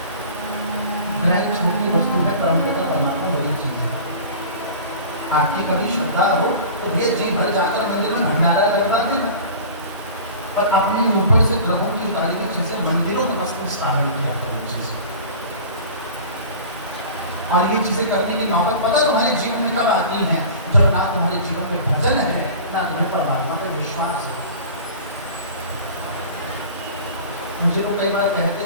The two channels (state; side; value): inverted; both; correlation -0.39